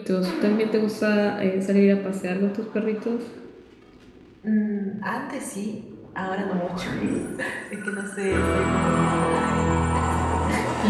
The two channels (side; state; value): both; identical; correlation 1.00